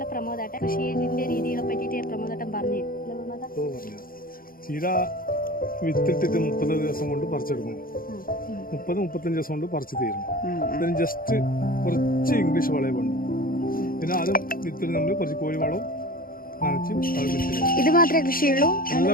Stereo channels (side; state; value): right; late; 0.42 ms